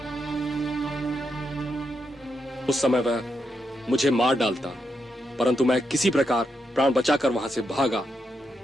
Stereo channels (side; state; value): both; normal; correlation 0.83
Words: उस समय वह मुझे मार डालता, परंतु मैं किसी प्रकार प्राण बचाकर वहां से भागा।